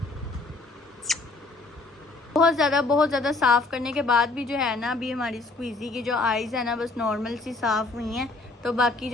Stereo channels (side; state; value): right; quieter; 3.5 dB